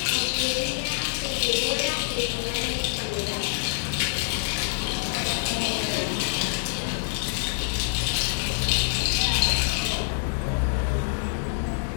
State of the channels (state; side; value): silent; right; digital silence